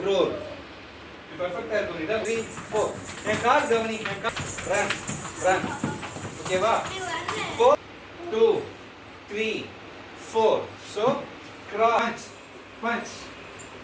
roll. Perfect है तो इधर 3, 4. एक कार गवनी, एक car. Run, run. Okay va? 4, 2, 3, 4. So crunch, punch.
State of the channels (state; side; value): identical; both; correlation 1.00